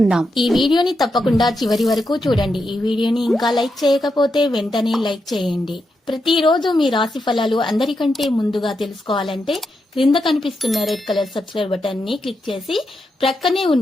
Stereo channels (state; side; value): normal; both; correlation 0.85